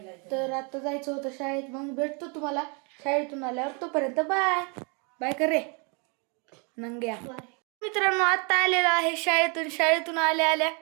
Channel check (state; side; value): quieter; left; 33.8 dB